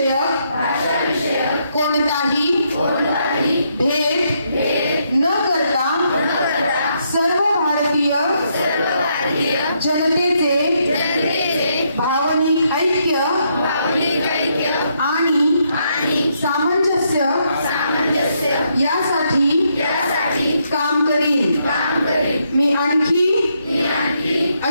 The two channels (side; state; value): both; inverted; correlation -0.76